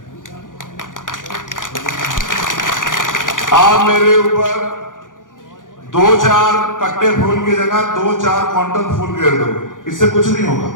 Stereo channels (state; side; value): late; right; 0.88 ms